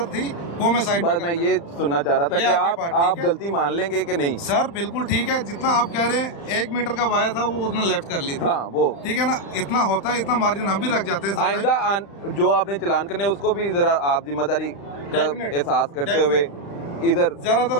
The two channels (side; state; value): right; late; 35 ms